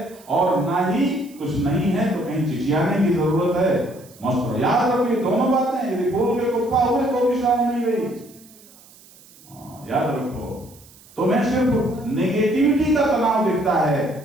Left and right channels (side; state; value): right; noise; hiss, 24 dB below the sound